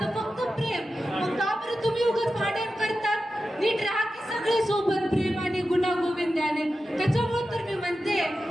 फक्त प्रेम. मग का बरं तुम्ही उगाच भांडण करतात? नीट राहा की सगळे सोबत प्रेम आणि गुणा गोविंदाने. त्याच्यामुळे तर मी म्हणते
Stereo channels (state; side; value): normal; both; correlation 0.92